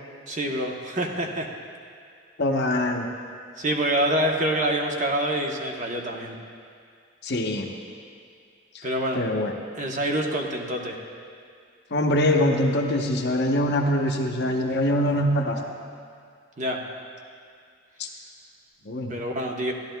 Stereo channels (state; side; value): normal; both; correlation 0.27